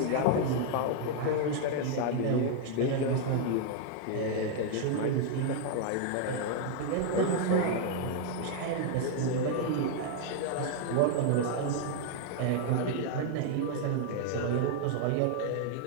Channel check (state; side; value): different; both; correlation 0.00